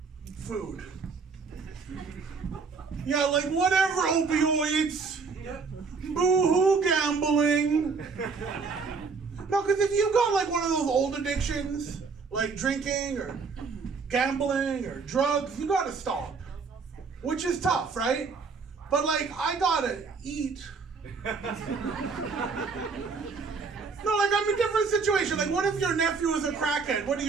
Food. Yeah, like whatever, opioids. Boo-hoo, gambling. No, because if you got like one of those old addictions, like drinking or gambling or drugs, you gotta stop. Which is tough, right? But like, I gotta eat. No, like I'm in a different situation. Like, what if your nephew is a crackhead? What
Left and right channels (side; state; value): left; quieter; 4.9 dB